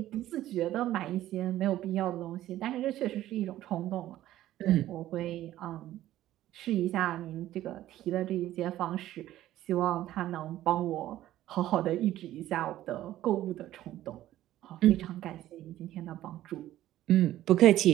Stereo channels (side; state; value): left; quieter; 13.9 dB